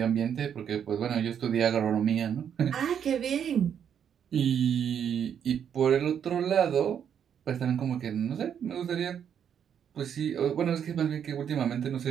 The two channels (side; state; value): left; quieter; 8.4 dB